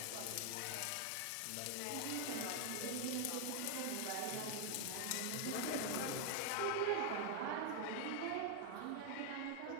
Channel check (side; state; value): both; different; correlation 0.00